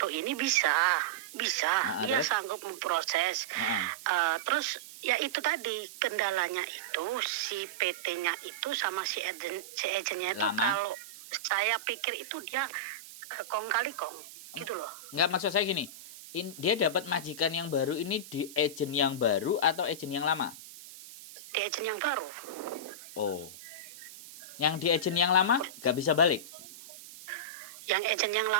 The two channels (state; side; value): noise; right; hiss, 16 dB below the sound